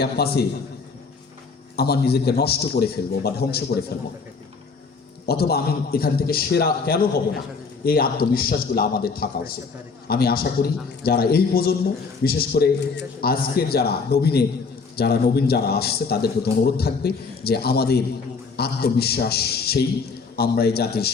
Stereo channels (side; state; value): right; quieter; 4.8 dB